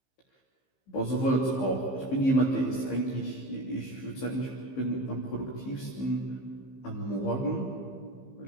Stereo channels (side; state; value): right; late; 15 ms